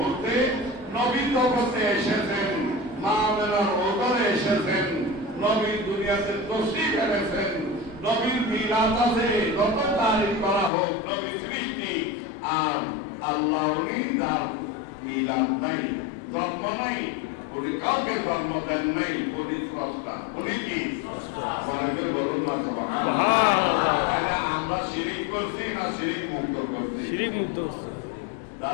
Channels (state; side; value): drops out; right; at 10.7 s